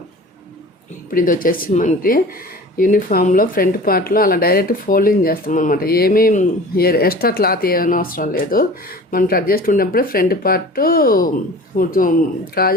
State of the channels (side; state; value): both; normal; correlation 0.41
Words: ఇప్పుడు ఇది వచ్చేసి మనకి యూనిఫామ్లో ఫ్రంట్ పార్ట్లో అలా డైరెక్ట్ ఫోల్డింగ్ చేస్తాం అనమాట. ఏమీ ఎక్స్ట్రా క్లాత్ ఏమైనా అవసరం లేదు. మనం కట్ చేస్తున్నప్పుడే ఫ్రంట్ పార్ట్